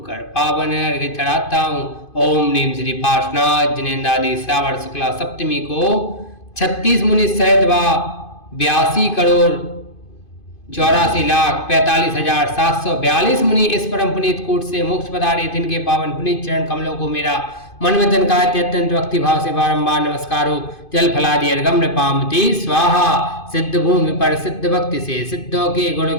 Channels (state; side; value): late; right; 2.5 ms